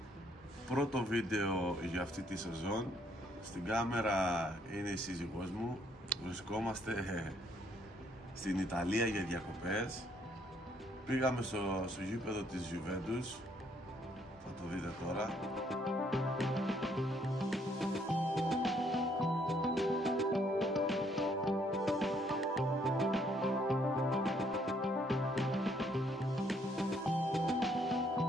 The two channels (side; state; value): both; normal; correlation 0.68